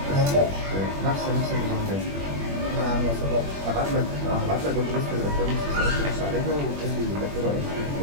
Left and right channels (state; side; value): late; left; 21 ms